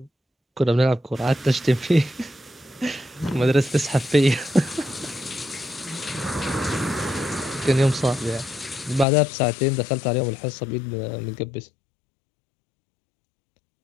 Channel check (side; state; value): right; drops out; at 9.1 s